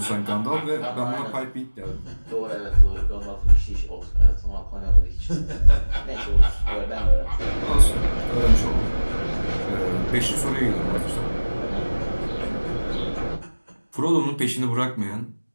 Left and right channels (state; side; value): inverted; both; correlation -1.00